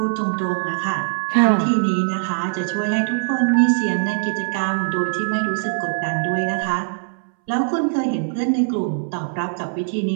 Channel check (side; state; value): left; silent; 63 dB below the other